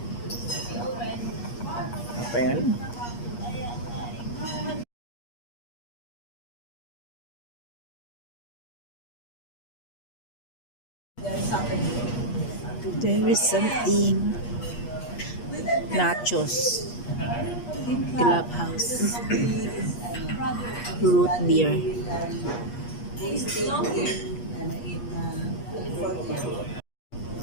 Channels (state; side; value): late; right; 8.4 ms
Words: Apa yang ini? There is something. Nachos. Clubhouse. Root beer.